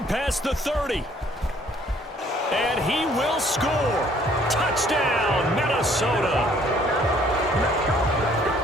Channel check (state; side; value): normal; both; correlation 0.60